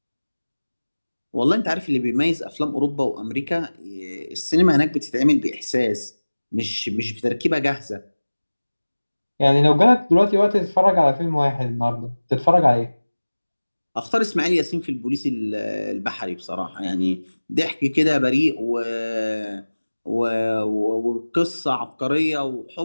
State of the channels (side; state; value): both; inverted; correlation -1.00